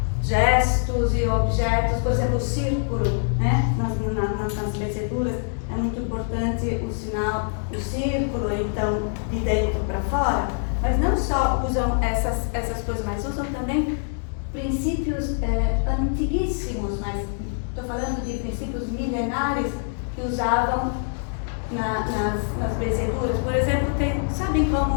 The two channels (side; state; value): right; silent; digital silence